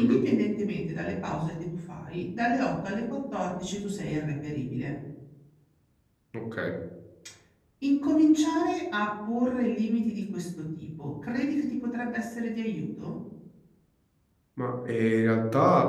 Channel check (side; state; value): both; identical; correlation 1.00